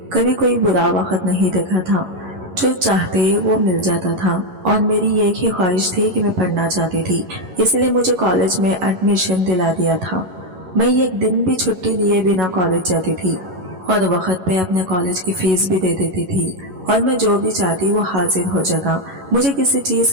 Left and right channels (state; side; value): late; left; 11 ms